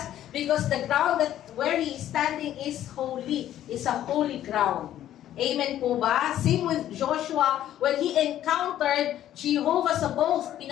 because the ground that where he is standing is holy, is a holy ground. Amen po ba? Same with Joshua, when he encountered Jehovah Sabaoth,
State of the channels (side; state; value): right; quieter; 12.1 dB